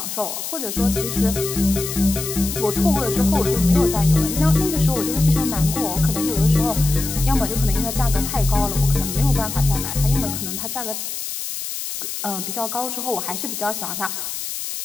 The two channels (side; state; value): left; noise; hiss, 6 dB below the sound